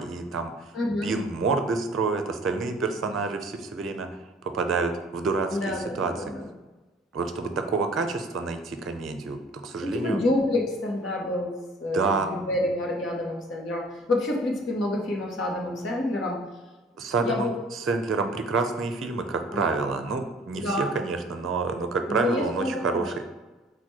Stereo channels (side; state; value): both; normal; correlation 0.52